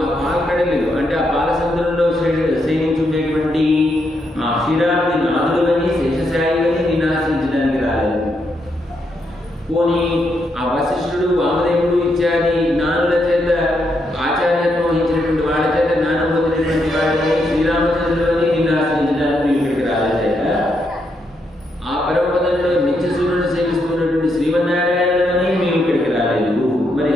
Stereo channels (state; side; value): normal; both; correlation 0.80